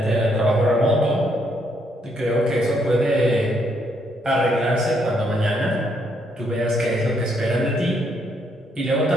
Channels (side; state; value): both; normal; correlation 0.73